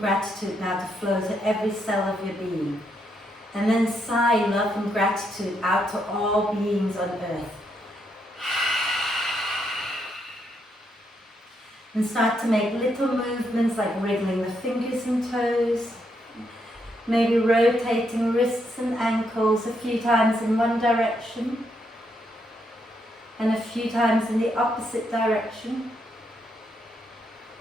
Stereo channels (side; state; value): both; normal; correlation 0.78